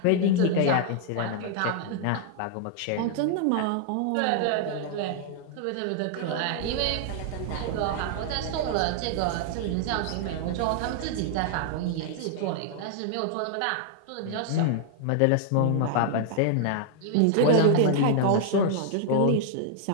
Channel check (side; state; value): both; different; correlation 0.00